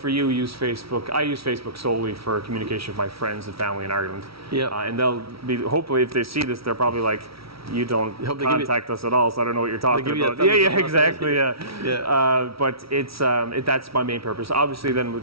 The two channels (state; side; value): late; left; 0.75 ms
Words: you use Facebook. I use Facebook solely for communication with my friends and family in Ireland. Yeah. And they'll be, hopefully if they see this, they're probably like, you don't contact us at all, so I don't know what you're talking about. Yeah, exactly. Yeah. But it's that's my main purpose. Obviously, then